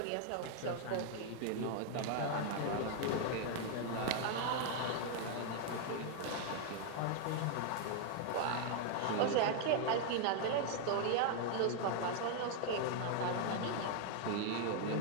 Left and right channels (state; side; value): different; both; correlation 0.00